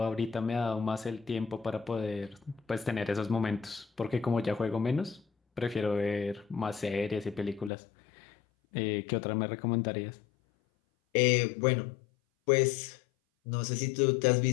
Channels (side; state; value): right; drops out; at 7.7 s